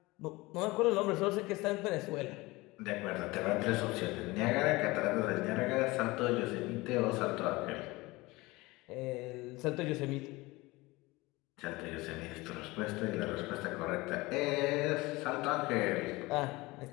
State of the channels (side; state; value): right; quieter; 21.7 dB